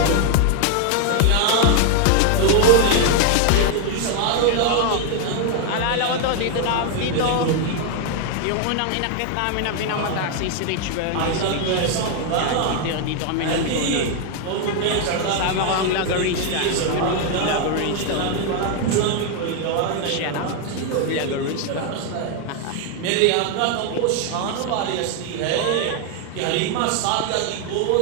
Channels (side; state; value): both; different; correlation 0.01